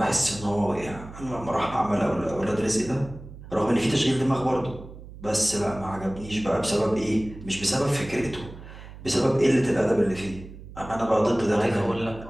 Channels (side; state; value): right; noise; hum, 15 dB below the sound